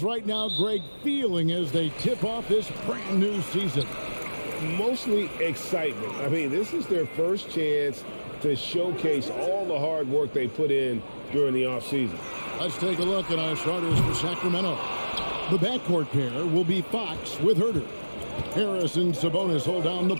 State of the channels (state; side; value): inverted; both; correlation -1.00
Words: right now, Greg, feeling as they tip off this brand new season? Mostly excitement. I mean, this is their first chance to showcase all the hard work they put in during the offseason. Let's take a look at our starters for Sacramento. The backcourt pair will be Fox with Herder. Harris and Sabonis hold down the